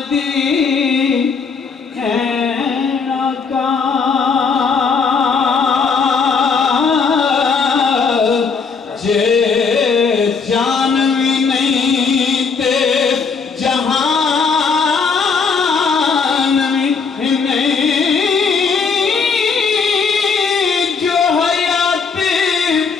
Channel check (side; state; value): right; quieter; 5.3 dB